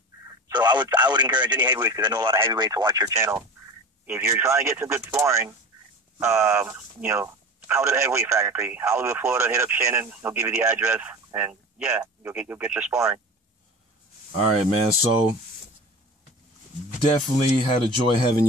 So I would encourage any heavyweights, because I know a lot of heavyweights watch your channel. If you're trying to get some good sparring, you know, come to the Heavyweight Factory, Hollywood, Florida. Hit up Shannon. He'll give you the address, and yeah, you'll get your sparring. All right, man. So definitely had a joy having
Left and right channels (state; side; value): normal; both; correlation 0.34